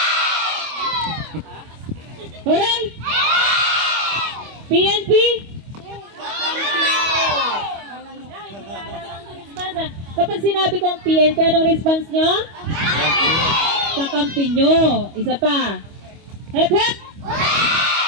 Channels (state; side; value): late; left; 25 ms